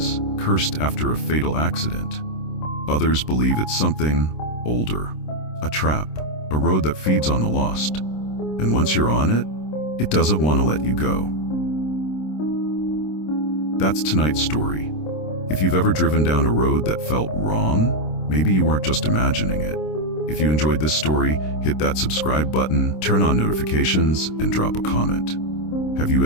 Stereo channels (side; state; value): right; late; 26 ms